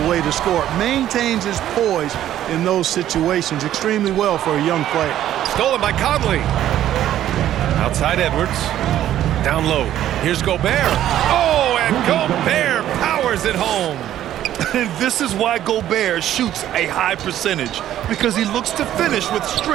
way to score. Maintains his poise in those situations extremely well for a young player. Stolen by Conley. Outside Edwards. Down low. Here's Gobert. Oh, and Gobert powers it home. And this is why Gobert shoots a high percentage, because he looks to finish with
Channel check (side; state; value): left; quieter; 12.1 dB